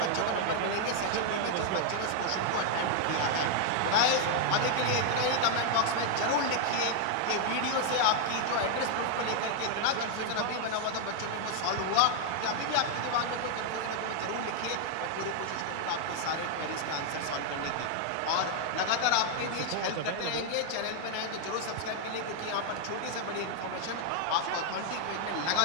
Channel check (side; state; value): both; different; correlation 0.00